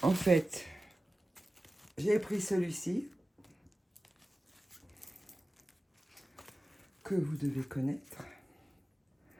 En fait, j'ai pris celui-ci que vous devez connaître.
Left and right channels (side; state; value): both; normal; correlation 0.95